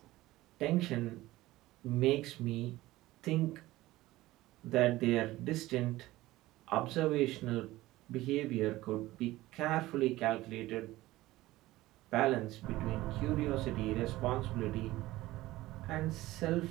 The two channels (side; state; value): left; quieter; 17.5 dB